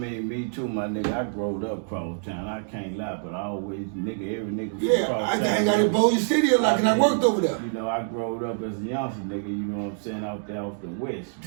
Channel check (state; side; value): silent; left; digital silence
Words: me too, my nigga. I growed up cross town. I can't lie, but I always every nigga from cross town. I hang out in Bossier City a lot, and I worked over there. You know, I growed up as a youngster, nigga. You know what I'm saying? Out there off the west,